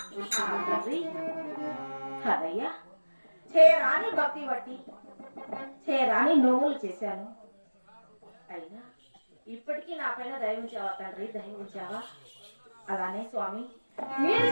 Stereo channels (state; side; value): inverted; both; correlation -1.00